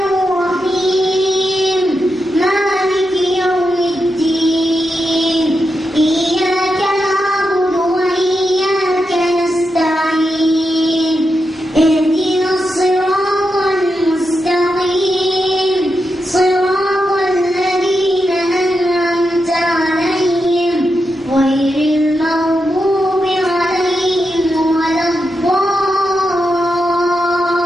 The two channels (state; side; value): normal; both; correlation 0.87